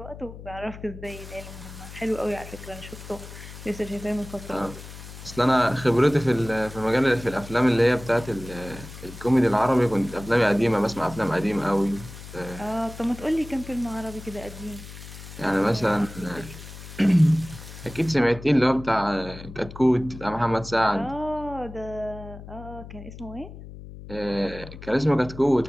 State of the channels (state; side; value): noise; left; hum, 14 dB below the sound